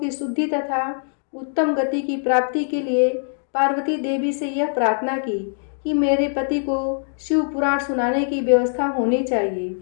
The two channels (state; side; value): silent; right; digital silence